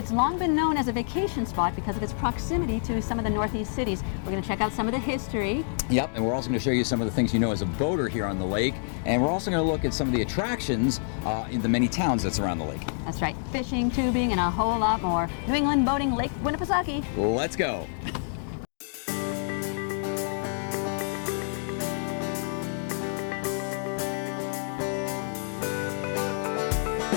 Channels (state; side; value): silent; right; digital silence